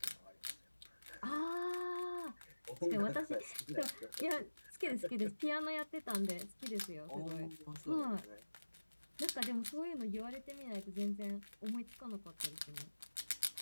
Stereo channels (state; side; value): inverted; both; correlation -1.00